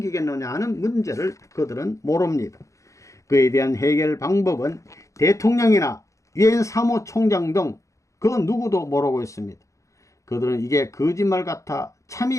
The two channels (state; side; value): late; right; 0.15 ms